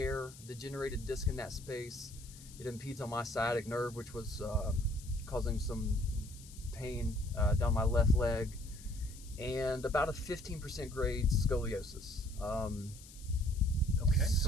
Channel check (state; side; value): noise; left; hiss, 19 dB below the sound